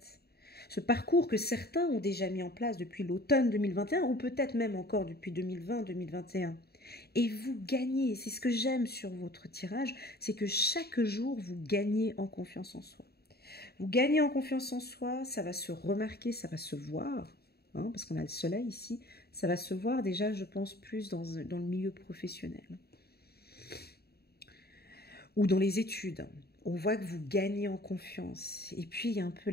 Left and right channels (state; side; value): late; right; 0.46 ms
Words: Ce parcours que certains ont déjà mis en place depuis l'automne 2021 ou peut-être même encore depuis 2020-2021. Et vous gagnez, c'est ce que j'aime sur votre tirage, c'est que chaque jour vous gagnez en confiance en soi. Vous gagnez en confiance en soi, ça va se remarquer, ça va se voir, hein, parce qu'on a le soleil ici, ça va se voir déjà, je pense, plus dans le milieu professionnel. Ou dans les études. On voit que vous gagnez en confiance. Et puis, il y a un peu